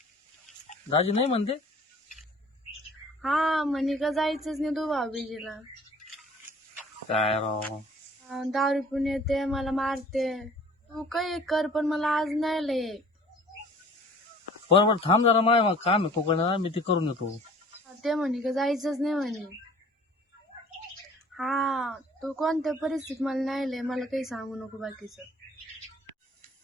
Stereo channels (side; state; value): both; normal; correlation 0.50